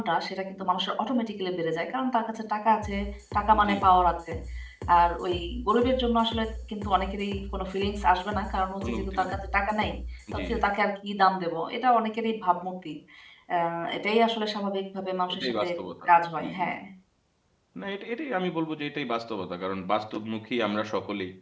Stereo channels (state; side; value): identical; both; correlation 1.00